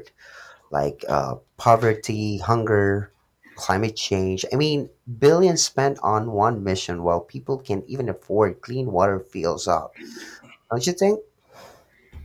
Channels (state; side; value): identical; both; correlation 1.00